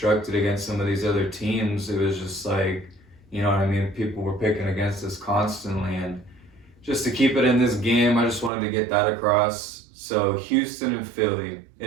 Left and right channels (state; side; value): drops out; left; at 8.5 s